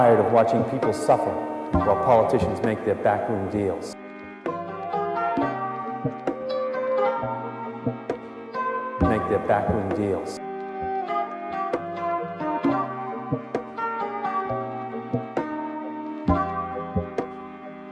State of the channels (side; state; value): both; identical; correlation 1.00